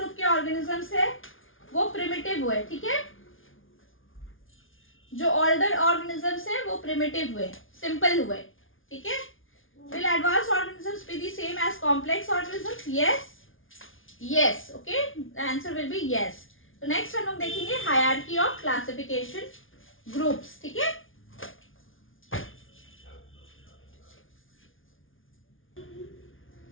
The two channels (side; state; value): right; late; 0.58 ms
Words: के ऑर्गेनिजम्स है वो प्रिमिटिव हुए, ठीक है। जो ओल्डर ऑर्गेनिजम्स है वो प्रिमिटिव हुए, सिंपल हुए, ठीक है। Will advance organisms be the same as complex organisms? Yes, okay, the answer will be yes. तो नेक्स्ट हम लोग देखेंगे हायरार्की ऑफ क्लासिफिकेशन ग्रुप्स, ठीक है।